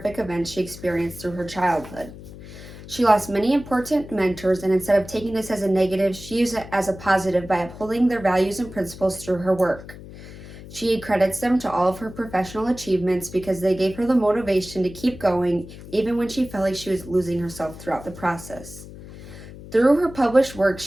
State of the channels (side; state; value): left; noise; hum, 15 dB below the sound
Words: events she experienced through her childhood. She lost many important mentors, and instead of taking this as a negative, she used it as a positive by upholding their values and principles through her work. She credits them to all of her professional achievements because they gave her the motivation to keep going even when she felt like she was losing herself throughout the process. Through her published work,